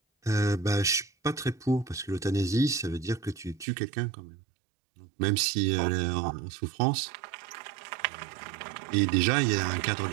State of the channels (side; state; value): left; drops out; at 3.7 s